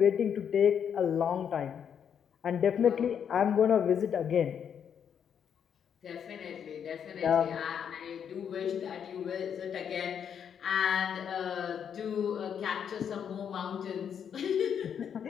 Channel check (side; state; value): right; quieter; 8.0 dB